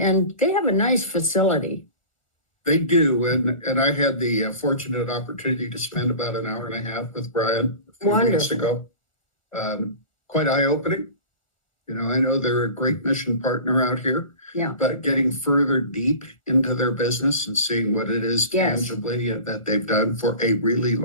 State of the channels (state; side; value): late; right; 1.4 ms